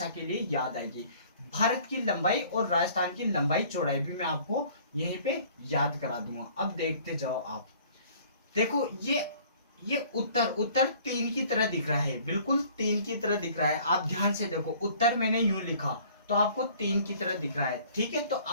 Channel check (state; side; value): inverted; both; correlation -0.53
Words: के लिए याद आएगी। भारत की लंबाई और राजस्थान की लंबाई चौड़ाई भी मैं आपको यहीं पे याद करा दूंगा। अब देखते जाओ आप, देखो ये उत्तर उत्तर 3 की तरह दिख रहा है, बिल्कुल 3 की तरह दिख रहा है। आप ध्यान से देखो, उत्तर मैंने यूं लिखा तो आपको 3 की तरह दिख रहा है, ठीक है। तो